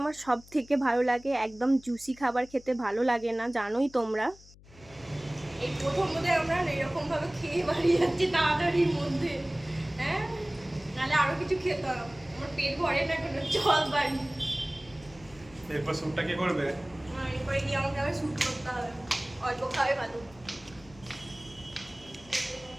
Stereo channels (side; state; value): left; noise; hum, 23 dB below the sound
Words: আমার সব থেকে ভালো লাগে, একদম জুসি খাবার খেতে ভালো লাগে না, জানোই তোমরা। এই প্রথম বোধহয় আমরা এরকমভাবে খেয়ে বাড়ি যাচ্ছি তাড়াতাড়ির মধ্যে, হ্যাঁ, নাহলে আরো কিছু খেতাম, আমার পেট ভরে না কোনো, চল বাড়ি। এরপর শ্যুটটা কে করবে? এরপরে গিয়ে আমাকে আবার শ্যুট করতে হবে, অল্প খাবে ভালো।